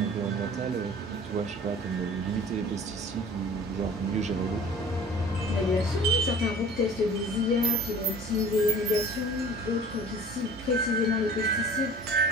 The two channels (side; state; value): both; normal; correlation 0.45